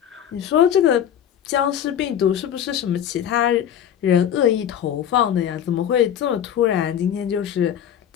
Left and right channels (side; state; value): right; quieter; 9.7 dB